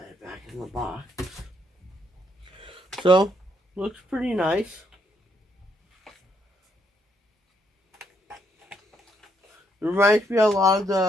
back in the box. So, looks pretty nice. It reminds me a lot of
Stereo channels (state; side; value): normal; both; correlation 0.74